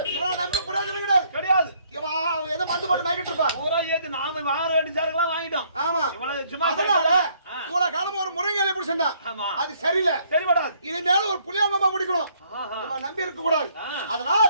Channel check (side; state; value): both; inverted; correlation -0.66